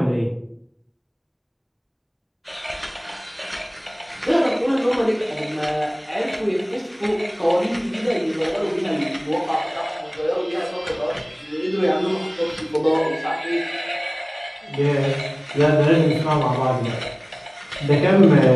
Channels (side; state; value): both; identical; correlation 1.00